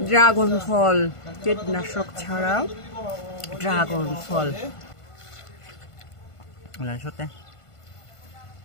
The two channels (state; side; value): late; right; 1.5 ms